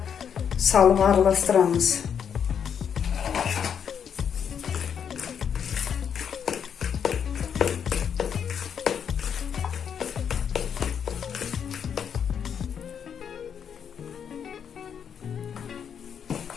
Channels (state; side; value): quieter; right; 7.8 dB